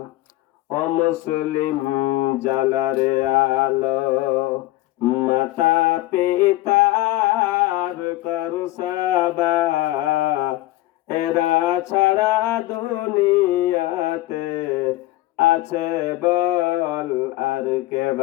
ও মুসলিম জালারে আলো, মাতা পিতার করসাবা, এরা ছাড়া দুনিয়াতে আছে বল আর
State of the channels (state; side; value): quieter; right; 17.3 dB